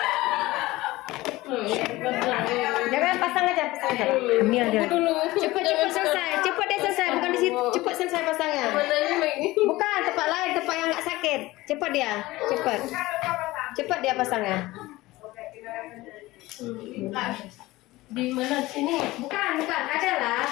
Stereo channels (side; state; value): right; quieter; 18.9 dB